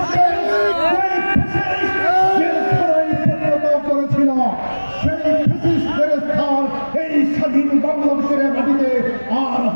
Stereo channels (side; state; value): both; inverted; correlation -1.00